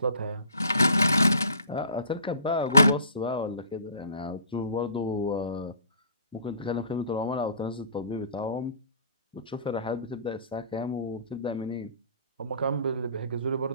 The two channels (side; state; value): both; inverted; correlation -0.50